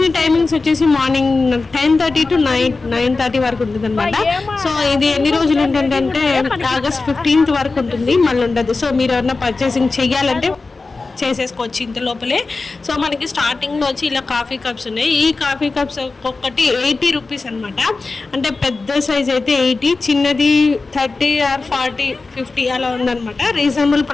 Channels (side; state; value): right; quieter; 3.8 dB